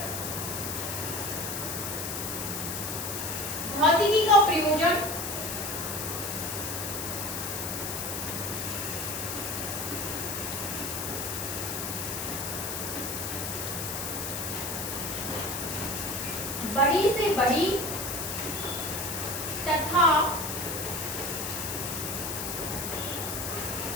भौतिकी का प्रयोजन बड़ी से बड़ी तथा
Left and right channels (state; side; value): noise; left; hiss, 4 dB below the sound